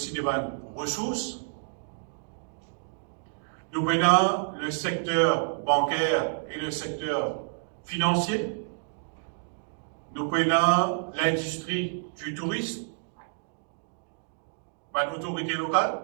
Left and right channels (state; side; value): silent; left; digital silence